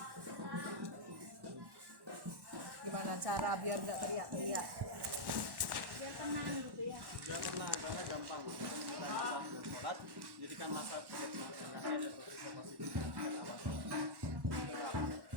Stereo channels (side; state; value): left; late; 1.1 ms